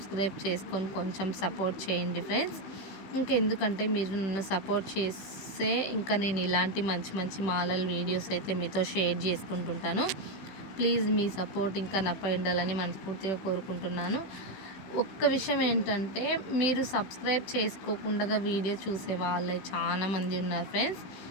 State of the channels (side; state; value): right; late; 15 ms